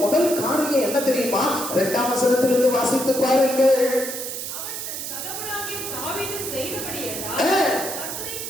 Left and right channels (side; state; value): right; noise; hiss, 6 dB below the sound